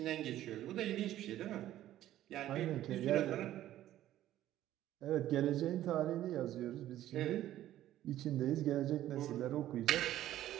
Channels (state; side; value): quieter; left; 13.2 dB